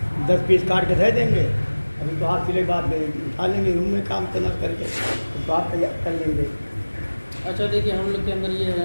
10 पीस काट के दे देंगे। अभी तो हाथ सिले के बाद उठा लेंगे, रूम में काम करना करके तो आप तैयार कर लेंगे। अच्छा देखिए, हम लोग के अंदर ये है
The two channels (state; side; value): inverted; both; correlation -1.00